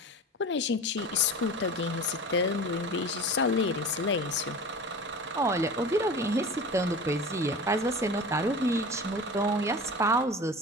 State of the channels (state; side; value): normal; both; correlation 0.34